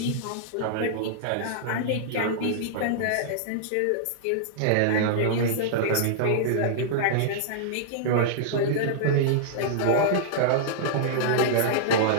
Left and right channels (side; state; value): both; different; correlation -0.01